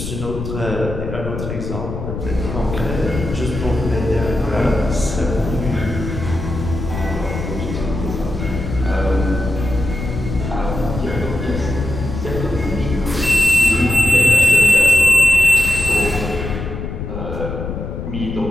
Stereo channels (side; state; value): left; noise; rumble, 6 dB below the sound